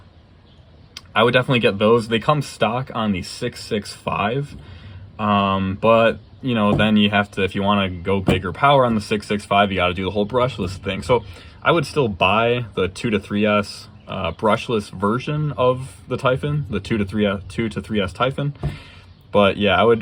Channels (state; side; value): identical; both; correlation 1.00